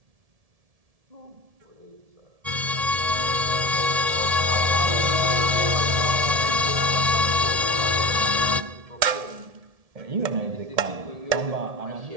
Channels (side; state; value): left; late; 1.7 ms